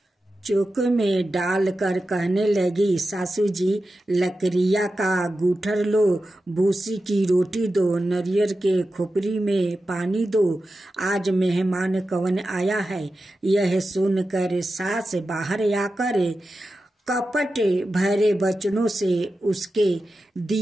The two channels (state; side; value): normal; both; correlation 0.92